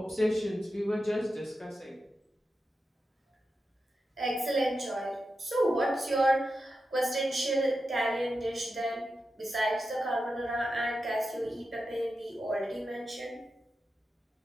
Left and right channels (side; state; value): both; normal; correlation 0.90